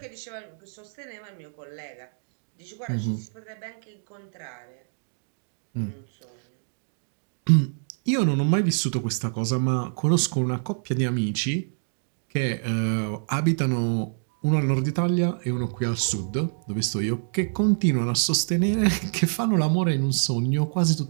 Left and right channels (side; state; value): left; silent; digital silence